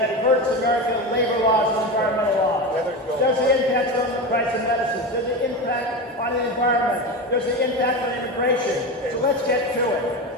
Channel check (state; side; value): normal; both; correlation 0.22